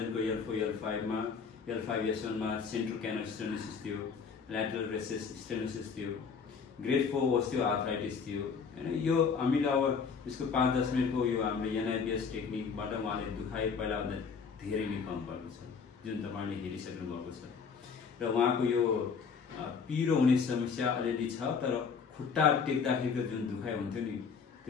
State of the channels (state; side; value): quieter; right; 5.8 dB